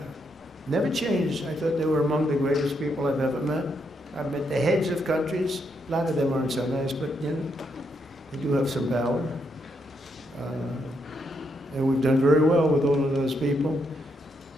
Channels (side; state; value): both; normal; correlation 0.78